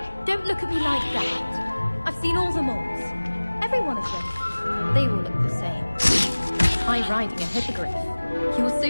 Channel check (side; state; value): both; inverted; correlation -1.00